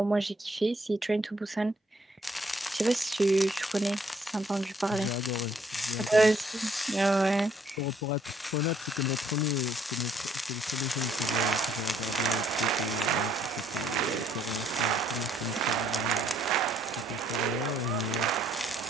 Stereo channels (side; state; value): both; normal; correlation 0.67